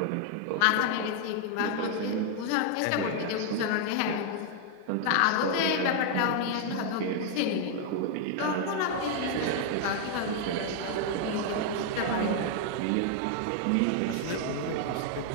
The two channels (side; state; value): both; different; correlation 0.00